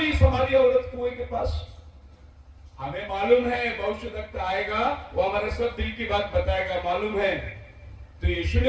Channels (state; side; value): identical; both; correlation 1.00